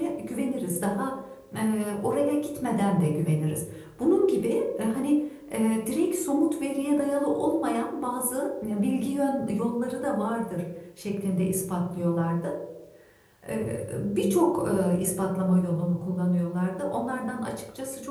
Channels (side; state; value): both; identical; correlation 1.00